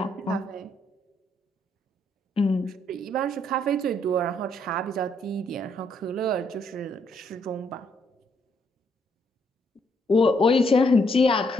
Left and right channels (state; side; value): normal; both; correlation 0.72